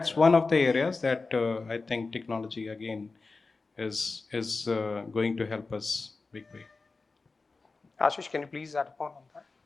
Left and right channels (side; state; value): right; quieter; 3.9 dB